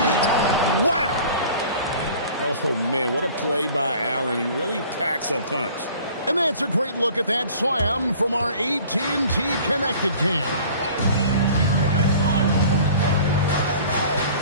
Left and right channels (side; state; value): both; inverted; correlation -0.47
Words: Wow! Oh, man, what a play by Allen. He really packs a punch. And that's a great look at that slam from our AT&T Connected Cam.